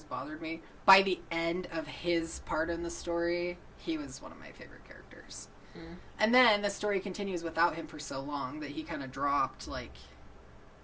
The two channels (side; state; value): both; identical; correlation 1.00